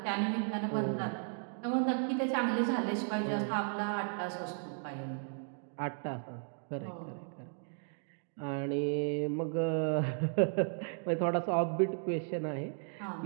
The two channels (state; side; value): silent; left; 54 dB below the other